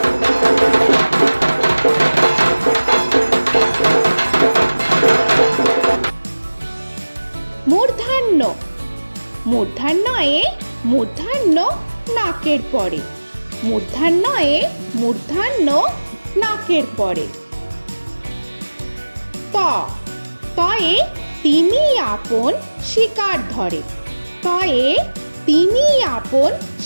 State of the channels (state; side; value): inverted; both; correlation -1.00